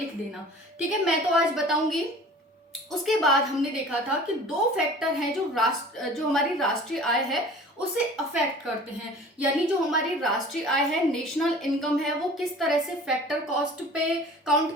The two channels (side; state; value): both; normal; correlation 0.44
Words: देना, ठीक है? मैं तो आज बताऊंगी। उसके बाद हमने देखा था कि 2 फैक्टर हैं जो हमारी राष्ट्रीय आय है उसे अफेक्ट करते हैं, यानी जो हमारी राष्ट्रीय आय है, नेशनल इनकम है, वो किस तरह से फैक्टर कॉस्ट पे काउंट